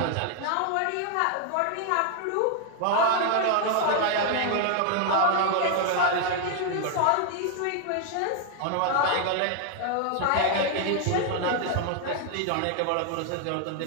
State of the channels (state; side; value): different; both; correlation 0.00